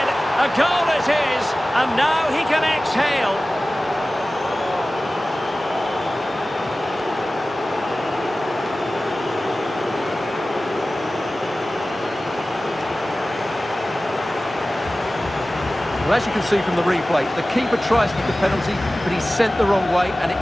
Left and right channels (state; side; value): normal; both; correlation 0.96